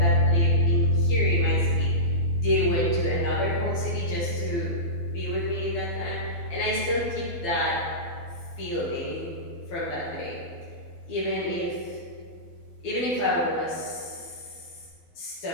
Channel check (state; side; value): late; right; 12 ms